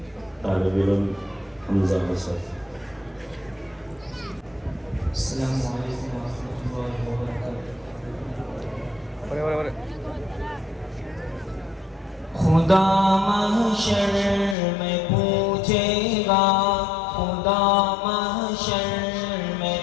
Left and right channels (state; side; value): drops out; right; at 14.6 s